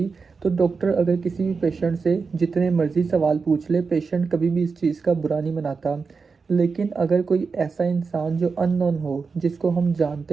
तो डॉक्टर अगर किसी भी पेशेंट से जितने मर्जी सवाल पूछ ले, पेशेंट कभी भी इस चीज़ का बुरा नहीं मनाता। लेकिन अगर कोई ऐसा इंसान जो अननोन हो, जिसको हम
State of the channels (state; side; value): quieter; left; 4.9 dB